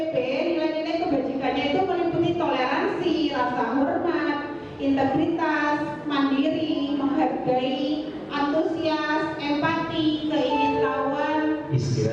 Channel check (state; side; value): identical; both; correlation 1.00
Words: nilai-nilai kebajikannya itu meliputi toleransi, rasa hormat, integritas, mandiri, menghargai, antusias, empati, keingintahuan.